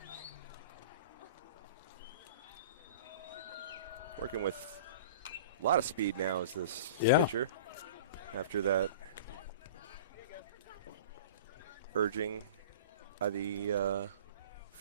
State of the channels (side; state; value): both; inverted; correlation -0.39